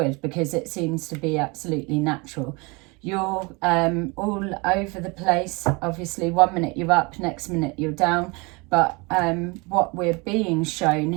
because it seems to be absolutely natural. You're all over the place. Obviously, 1 minute you're up, next minute you're down. But what we're being shown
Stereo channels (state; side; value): quieter; left; 27.6 dB